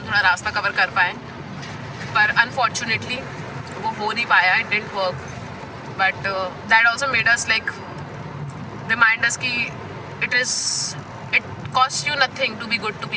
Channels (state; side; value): identical; both; correlation 1.00